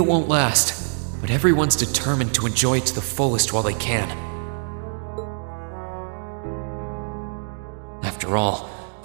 won't last, but everyone's determined to enjoy it to the fullest while they can. After all,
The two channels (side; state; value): left; silent; 63 dB below the other